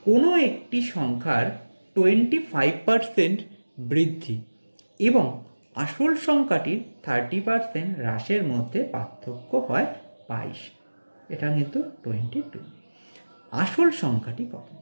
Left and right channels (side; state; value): both; inverted; correlation -1.00